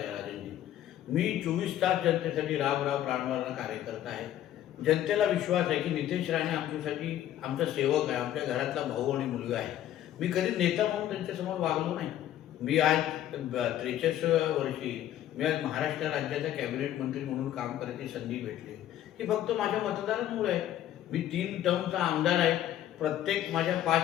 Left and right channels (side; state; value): right; quieter; 12.1 dB